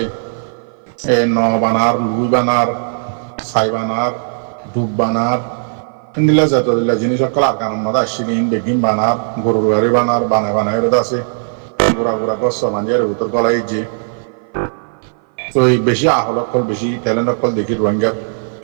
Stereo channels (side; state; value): left; silent; 56 dB below the other